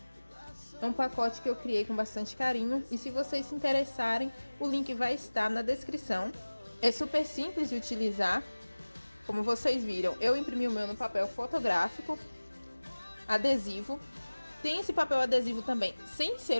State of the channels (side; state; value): both; inverted; correlation -1.00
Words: É um pacote que eu criei com bastante carinho. E se vocês se interessarem, o link vai estar na descrição. É super simples de utilizar. Como vocês viram, eu imprimi o meu no papel fotográfico, adesivo. Tem esse papel adesivo também, sem ser